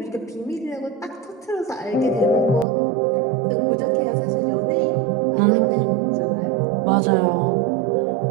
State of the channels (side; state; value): left; drops out; at 2.7 s